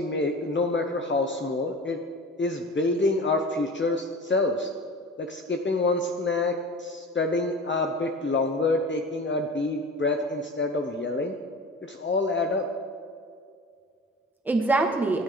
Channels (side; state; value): both; normal; correlation 0.36